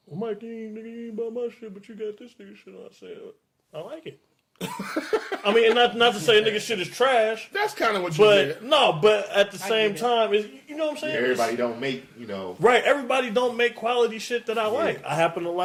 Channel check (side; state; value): both; identical; correlation 1.00